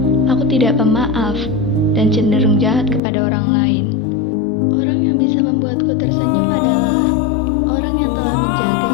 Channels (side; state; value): right; drops out; at 3.0 s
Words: aku tidak pemaaf dan cenderung jahat kepada orang lain. Orang yang bisa membuatku tersenyum adalah orang yang telah